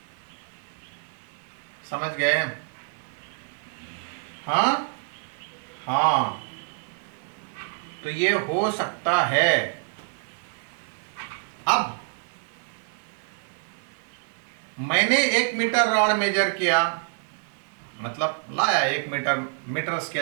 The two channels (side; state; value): left; silent; digital silence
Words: समझ गए? हाँ हाँ, तो ये हो सकता है। अब मैंने 1 मीटर रॉड मेजर किया, मतलब लाया 1 मीटर